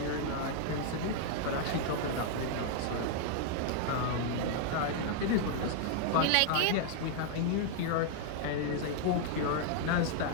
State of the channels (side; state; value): both; different; correlation -0.01